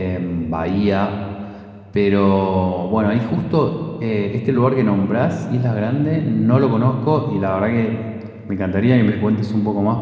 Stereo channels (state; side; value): identical; both; correlation 1.00